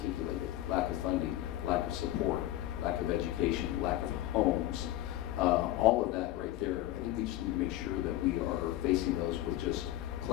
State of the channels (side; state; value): right; quieter; 15.0 dB